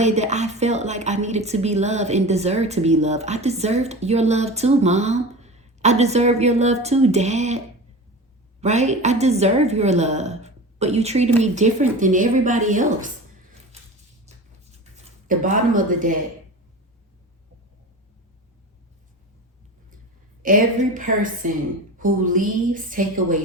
that I felt like I needed to be loved and deserved to be loved. I deserved your love too, Mom. I deserve your love too, Dad. Right? I deserve your love. But you treated me different than everybody else. The bottom of the deck. Every person who leaves take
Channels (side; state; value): both; normal; correlation 0.32